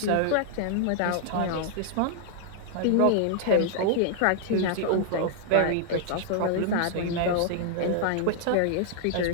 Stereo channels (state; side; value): different; both; correlation -0.01